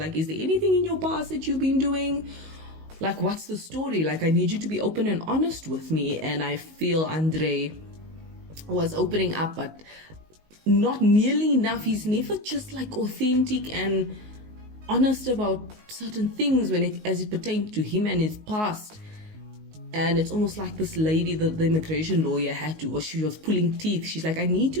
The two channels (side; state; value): left; late; 19 ms